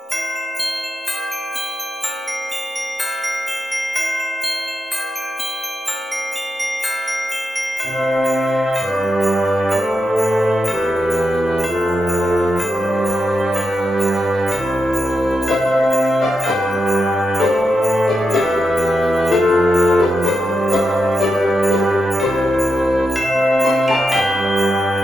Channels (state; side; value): normal; both; correlation 0.86